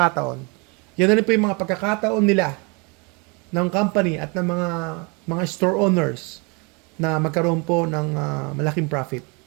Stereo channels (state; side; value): quieter; left; 30.7 dB